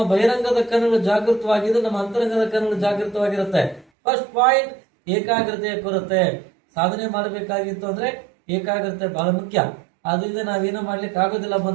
ಬಹಿರಂಗದ ಕಣ್ಣುಗಳು ಜಾಗೃತವಾಗಿದ್ದು, ನಮ್ಮ ಅಂತರಂಗದ ಕಣ್ಣುಗಳು ಜಾಗೃತವಾಗಿರುತ್ತೆ. ಫಸ್ಟ್ ಪಾಯಿಂಟ್, ಏಕಾಗ್ರತೆಯ ಕೊರತೆ. ಸಾಧನೆ ಮಾಡಬೇಕಾಗಿತ್ತು ಅಂದ್ರೆ ಏಕಾಗ್ರತೆ ಬಹಳ ಮುಖ್ಯ. ಅದರಿಂದ ನಾವೇನೋ ಮಾಡ್ಲಿಕ್ಕೆ ಆಗೋದಿಲ್ಲ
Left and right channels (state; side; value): drops out; left; at 3.9 s